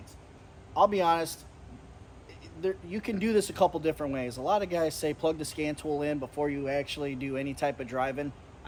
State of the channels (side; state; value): both; identical; correlation 1.00